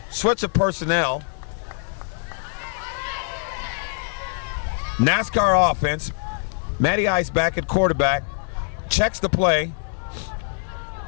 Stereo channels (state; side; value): silent; right; digital silence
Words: Switch of personnel. NASCAR offense. Matty Ice back at quarterback. Checks the play.